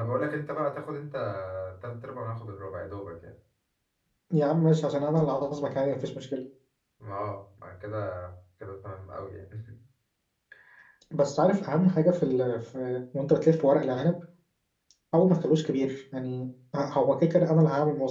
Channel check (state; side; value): identical; both; correlation 1.00